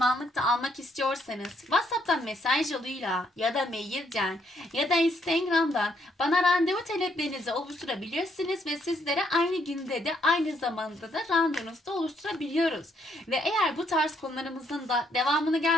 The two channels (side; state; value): both; normal; correlation 0.72